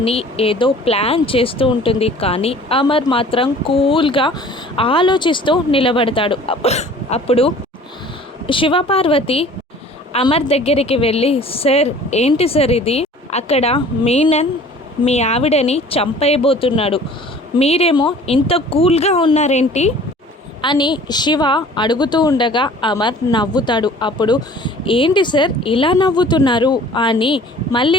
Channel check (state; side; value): normal; both; correlation 0.48